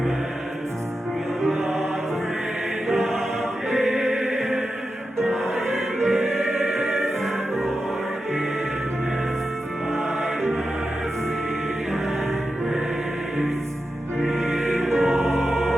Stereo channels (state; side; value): normal; both; correlation 0.90